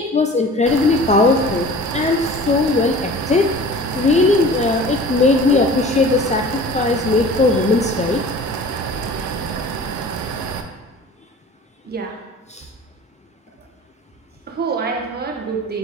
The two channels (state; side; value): normal; both; correlation 0.43